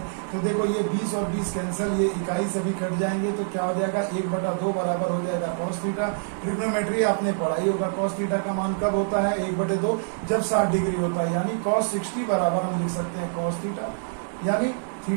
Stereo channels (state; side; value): silent; left; digital silence